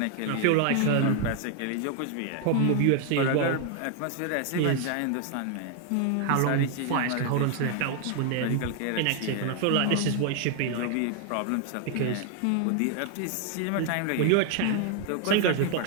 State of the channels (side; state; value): both; different; correlation 0.00